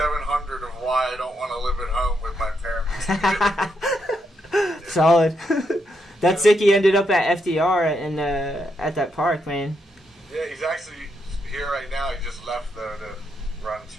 of why I don't want to live at home with my parents. Solid. That's sick. He ended up at FDR and at that park, man. Yeah, he's actually here right now. He just left though to run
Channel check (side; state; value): both; normal; correlation 0.80